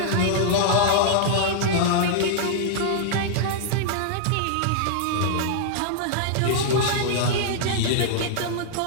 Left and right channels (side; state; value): both; different; correlation -0.01